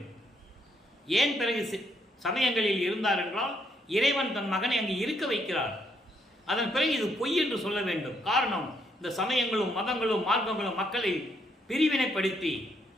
ஏன் பிறகு சமயங்களில் இருந்தார் என்றால், இறைவன் தன் மகனை அங்கு இருக்க வைக்கிறார். அதன் பிறகு இது பொய் என்று சொல்ல வேண்டும். காரணம், இந்த சமயங்களும் மதங்களும் மார்க்கங்களும் மக்களை பிரிவினைப்படுத்தி,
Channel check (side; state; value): both; normal; correlation 0.73